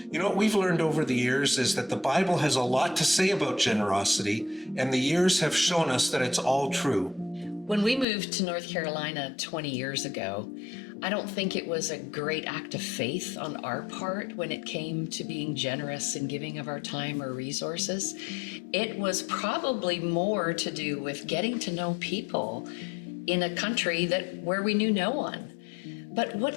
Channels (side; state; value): right; drops out; at 8.1 s